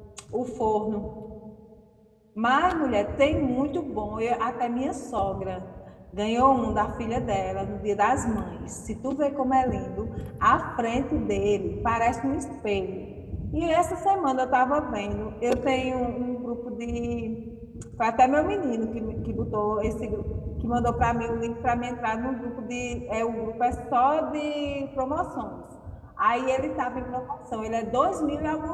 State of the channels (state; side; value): identical; both; correlation 1.00